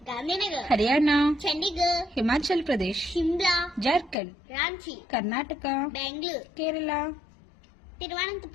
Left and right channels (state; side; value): drops out; right; at 4.2 s